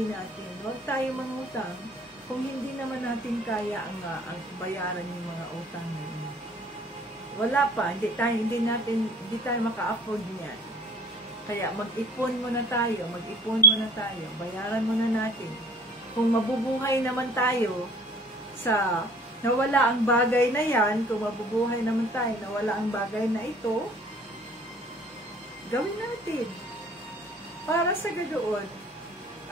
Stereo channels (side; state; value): both; normal; correlation 0.51